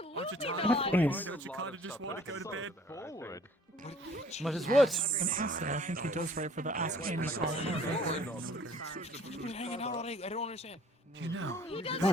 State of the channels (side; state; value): both; normal; correlation 0.54